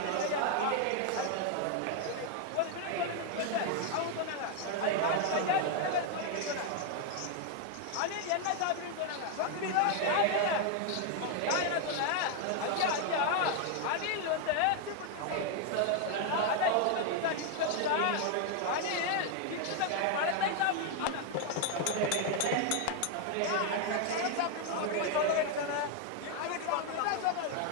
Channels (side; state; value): both; different; correlation 0.00